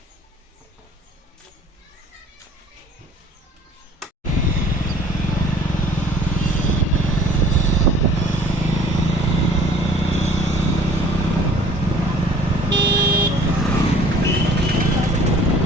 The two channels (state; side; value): normal; both; correlation 0.52